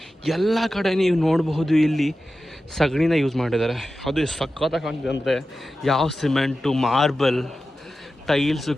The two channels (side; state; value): both; normal; correlation 0.93